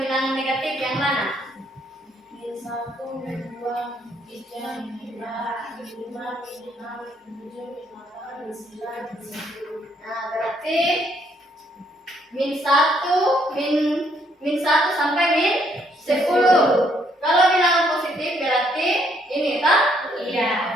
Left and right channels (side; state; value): both; normal; correlation 0.69